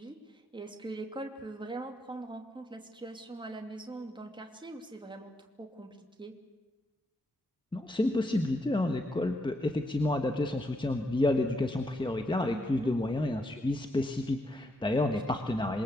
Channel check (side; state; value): both; normal; correlation 0.79